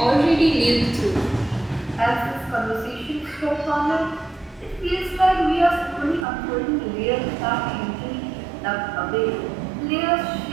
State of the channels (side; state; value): left; drops out; at 6.2 s